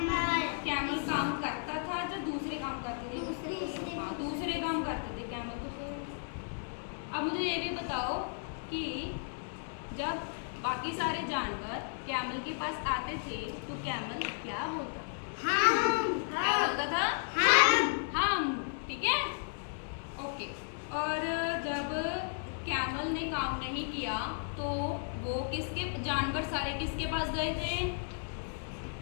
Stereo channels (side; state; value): right; silent; digital silence